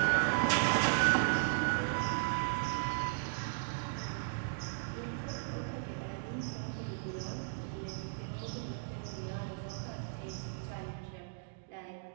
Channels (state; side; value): silent; left; digital silence